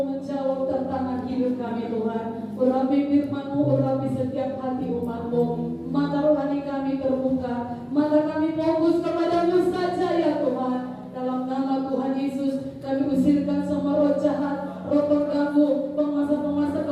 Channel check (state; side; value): identical; both; correlation 1.00